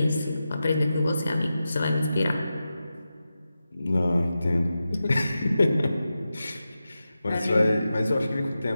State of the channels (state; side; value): inverted; both; correlation -0.92